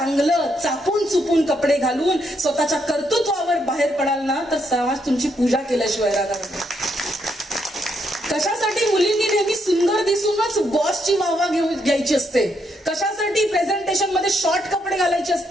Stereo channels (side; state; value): both; normal; correlation 0.76